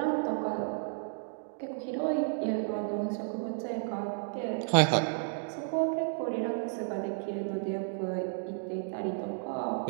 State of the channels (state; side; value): silent; left; digital silence